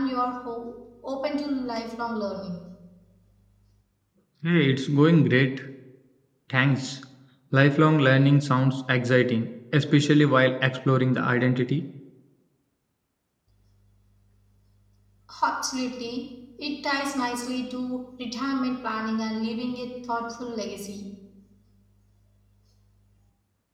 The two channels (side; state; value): both; identical; correlation 1.00